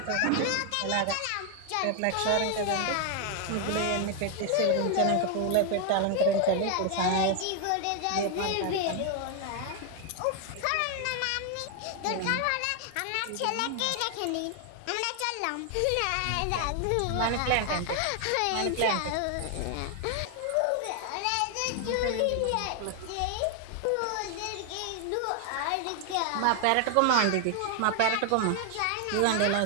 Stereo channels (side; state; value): both; different; correlation 0.00